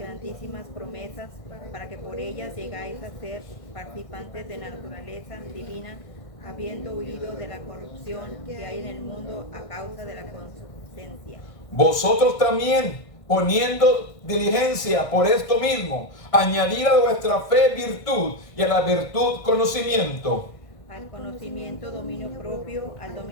promesas, para que por ellas llegáis a ser participantes de la naturaleza divina, habiendo huido de la corrupción que hay en el mundo a causa de la concupiscencia. Vosotros también, poniendo diligencia por esto mismo, añadir a vuestra fe virtud, y a la virtud conocimiento, al conocimiento dominio propio, al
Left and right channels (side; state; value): right; late; 1.6 ms